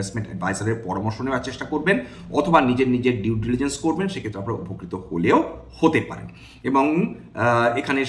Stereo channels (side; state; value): both; identical; correlation 1.00